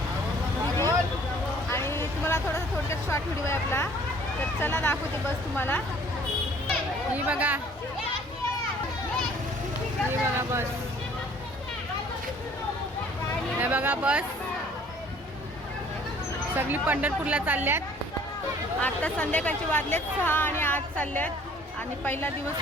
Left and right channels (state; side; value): normal; both; correlation 0.55